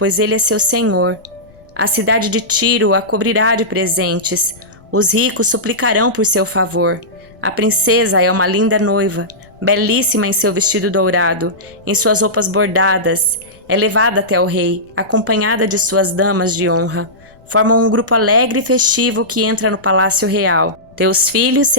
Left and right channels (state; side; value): noise; left; rumble, 28 dB below the sound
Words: ele é seu senhor. A cidade de Tiro a cobrirá de presentes. Os ricos suplicarão por seu favor. A princesa é uma linda noiva, belíssima em seu vestido dourado, em suas roupas bordadas. É levada até o rei, acompanhada de suas damas de honra. Formam um grupo alegre e festivo que entra no palácio real. Teus filhos